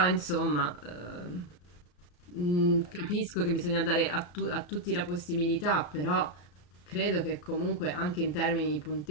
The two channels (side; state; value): right; late; 34 ms